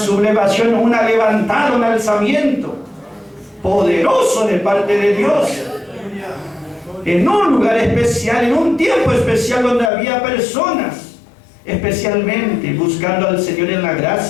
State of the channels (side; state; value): right; drops out; at 9.9 s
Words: una levantada, un alzamiento poderoso de parte de Dios. En un lugar especial, en un tiempo especial donde había personas especialmente buscando al Señor en la